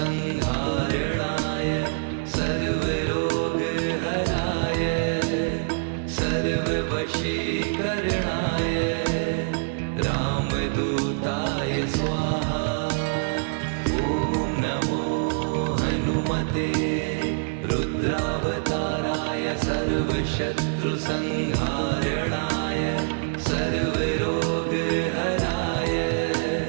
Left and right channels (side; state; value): left; silent; digital silence